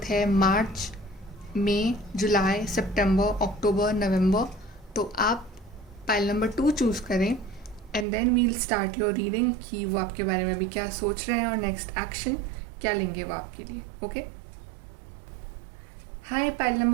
है मार्च, मई, जुलाई, सितंबर, अक्टूबर, नवंबर, तो आप पाइल नंबर 2 चूज़ करें। And then we'll start your reading कि वो आपके बारे में अभी क्या सोच रहे हैं और नेक्स्ट एक्शन क्या लेंगे वो आपके लिए। ओके। हाय पाइल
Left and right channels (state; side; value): drops out; left; at 8.1 s